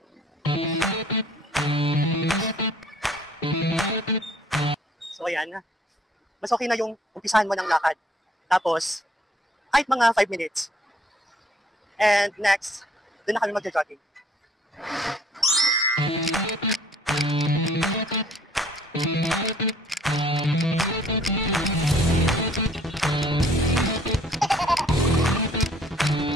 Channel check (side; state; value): both; normal; correlation 0.59